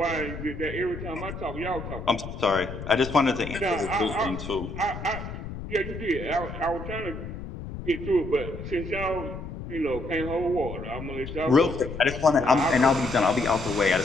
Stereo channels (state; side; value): noise; left; rumble, 9 dB below the sound